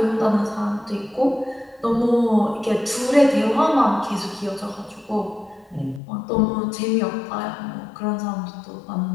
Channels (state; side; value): drops out; right; at 6.0 s